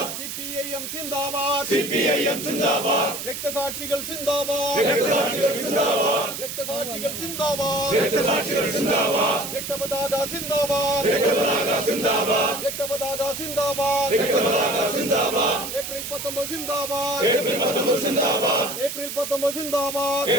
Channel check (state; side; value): noise; right; hiss, 7 dB below the sound